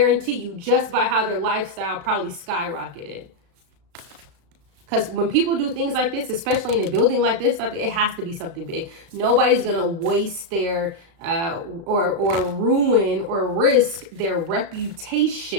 you, just by how their lifestyle probably skyrocketed. Because when people do things like this, especially in a building like this, it has to be something big. Nobody's going to waste their or ruin or risk their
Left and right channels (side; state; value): left; late; 35 ms